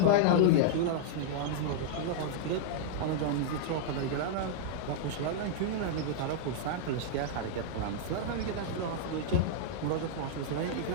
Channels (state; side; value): different; both; correlation -0.01